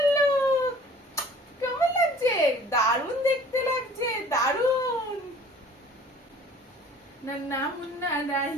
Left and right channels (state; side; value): normal; both; correlation 0.49